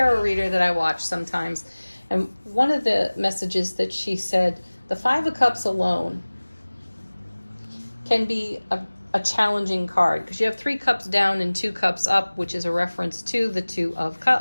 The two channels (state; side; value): inverted; both; correlation -1.00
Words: reader that I watch sometimes, And one of the messages that she said, the Five of Cups alone can be a challenging card because you have 3 cups down and 2 cups up, which is a reference to the Two of